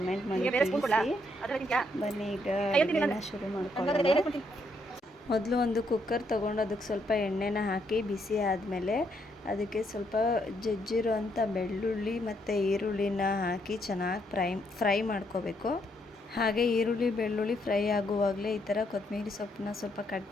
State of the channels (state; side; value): normal; both; correlation 0.74